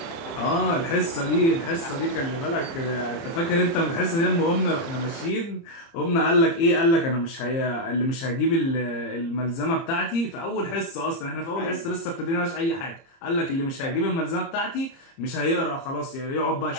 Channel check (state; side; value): late; right; 30 ms